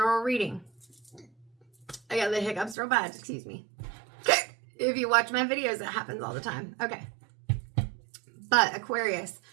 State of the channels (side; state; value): left; drops out; at 2.8 s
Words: reading. I got the hiccups real bad, excuse me. If you watch my videos, it happens all the time. Okay. But Aquarius,